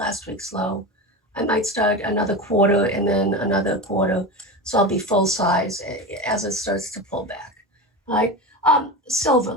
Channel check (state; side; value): normal; both; correlation 0.24